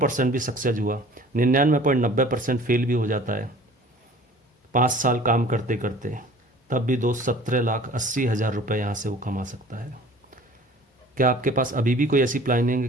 भी सक्सेस हुआ, 99.90% फेल भी हो जाता है 5 साल काम करते करते, तब भी दोस्त 17,80,000 रुपये यहाँ से वो कमा सकता है। क्या आपके पास अभी भी कोई ऐसी प्लानिंग है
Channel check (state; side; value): normal; both; correlation 0.48